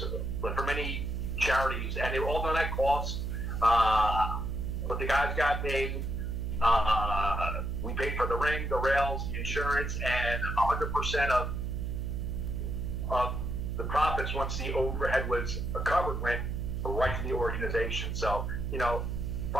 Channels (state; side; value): noise; right; hum, 2 dB below the sound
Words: for many charities, and they were all done at cost. But the guys got paid. We paid for the ring, the rails, the insurance, and 100% of the profits, once the overhead was covered, went right to the organization. So,